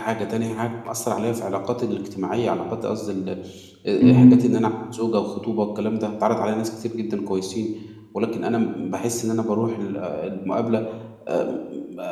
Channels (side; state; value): both; identical; correlation 1.00